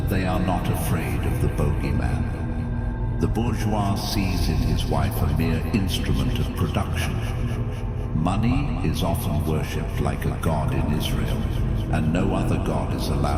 they are not afraid of the bogeyman. The bourgeois sees in his wife a mere instrument of production. Money is often worshipped like a god in Israel, and no other god is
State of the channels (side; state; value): both; identical; correlation 1.00